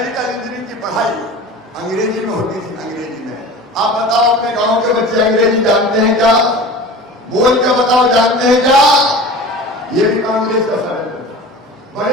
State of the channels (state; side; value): normal; both; correlation 0.37